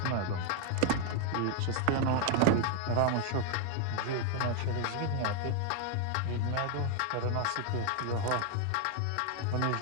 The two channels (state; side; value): different; both; correlation 0.00